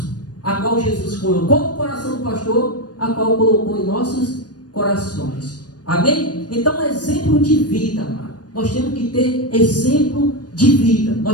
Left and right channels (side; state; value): right; late; 0.69 ms